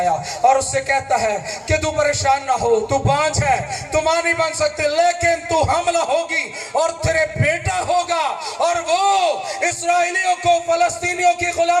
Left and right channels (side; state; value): both; identical; correlation 1.00